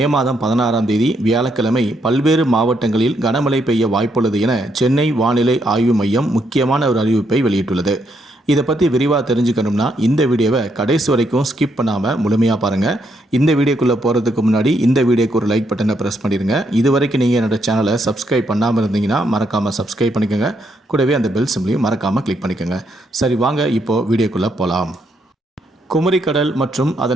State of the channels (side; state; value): both; normal; correlation 0.76